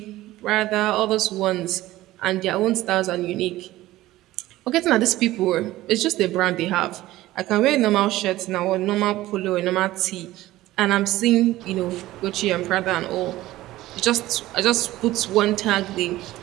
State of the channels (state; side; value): quieter; left; 16.3 dB